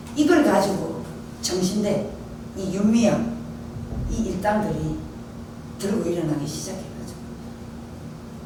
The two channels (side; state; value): both; identical; correlation 1.00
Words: 이걸 가지고 정신대 이 윤미향 이 일당들이 들고 일어나기 시작해가지고